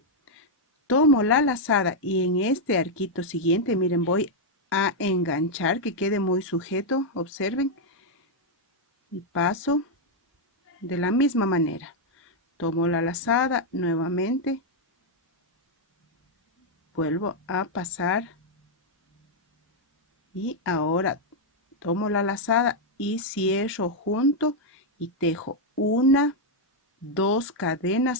tomo la lazada y en este arquito siguiente, miren, voy a enganchar que quede muy sujeto, observen, y paso de la misma manera. Tomo la lazada nuevamente, vuelvo a pasar y ahora tomo la lazada y cierro junto y tejo 1, 2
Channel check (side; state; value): both; normal; correlation -0.01